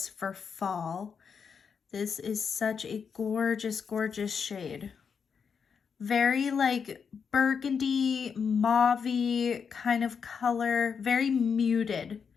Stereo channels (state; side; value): quieter; right; 6.3 dB